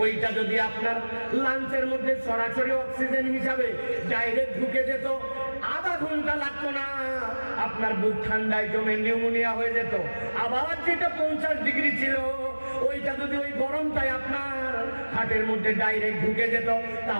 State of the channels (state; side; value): inverted; both; correlation -1.00